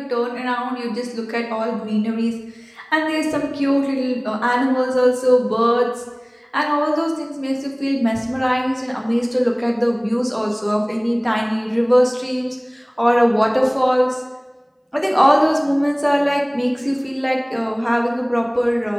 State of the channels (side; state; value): both; identical; correlation 1.00